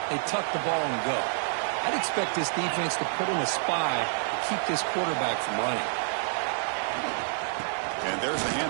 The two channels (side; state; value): left; silent; digital silence